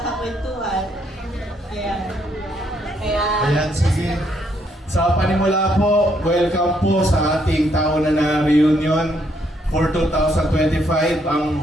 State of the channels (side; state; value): both; normal; correlation 0.72